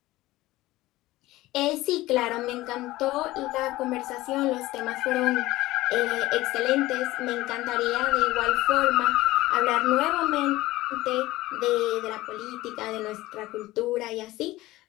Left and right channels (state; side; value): quieter; right; 17.9 dB